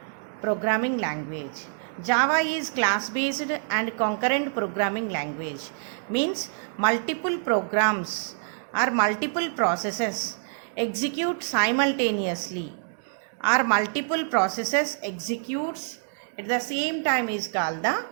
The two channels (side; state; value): left; silent; digital silence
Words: programming language. Java is class-based and concurrent programming language. Means multiple programs or multiple processes execute simultaneously, or multiple processes executes at the same time is called the